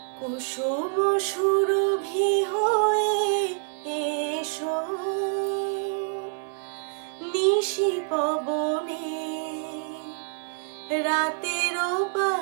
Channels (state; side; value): silent; left; 60 dB below the other